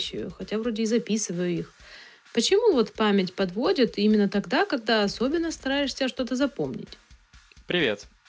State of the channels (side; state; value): both; identical; correlation 1.00